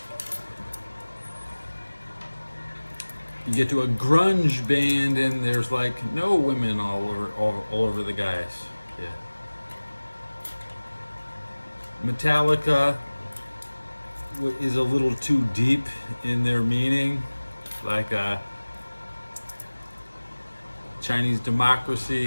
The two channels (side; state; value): both; inverted; correlation -1.00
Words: you get to a grunge band and there's like no women all over the guys. Yeah. Metallica is a little too deep in their meaning, like Chinese